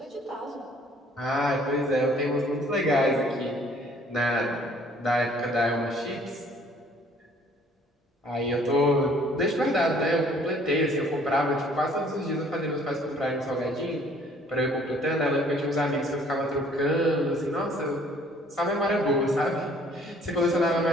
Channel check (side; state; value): both; normal; correlation 0.58